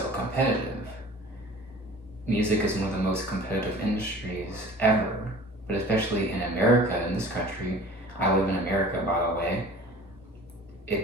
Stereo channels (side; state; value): both; normal; correlation 0.44